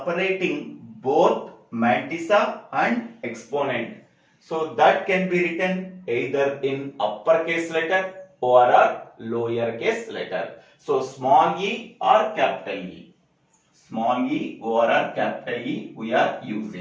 both mantissa and exponent. So that can be written either in uppercase letter or a lowercase letter. So small e or capital E. Small e or a capital E we are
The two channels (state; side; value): identical; both; correlation 1.00